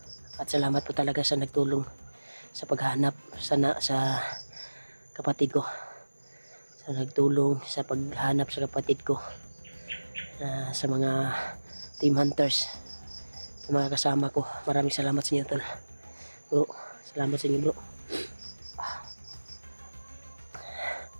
At salamat po talaga sa nagtulong sa paghanap sa kapatid ko. Sa nagtulong sa paghanap sa kapatid ko. Sa mga team hunters, sa mga kasama ko. Maraming salamat sa inyo tol. Bro, salamat sa inyo bro.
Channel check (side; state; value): both; inverted; correlation -1.00